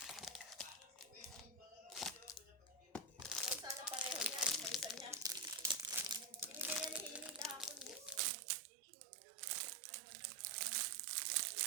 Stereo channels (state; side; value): drops out; left; at 8.2 s